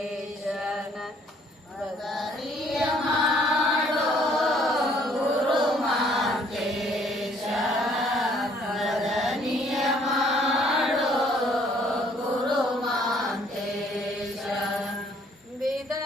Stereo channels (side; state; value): both; normal; correlation 0.62